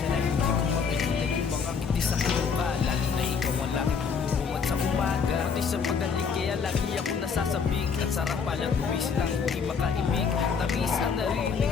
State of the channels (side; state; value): right; quieter; 6.0 dB